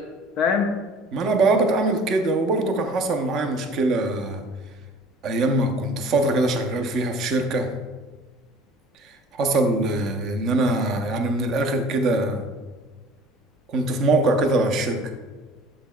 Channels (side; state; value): both; normal; correlation 0.48